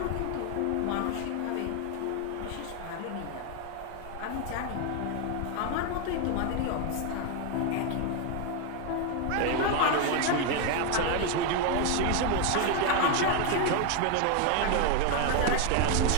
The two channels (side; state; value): both; different; correlation 0.01